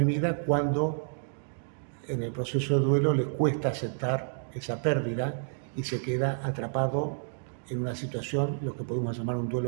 cuando en el proceso de duelo le cuesta aceptar esa pérdida y se queda atrapado en una situación, lo que podemos llamar un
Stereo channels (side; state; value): left; silent; digital silence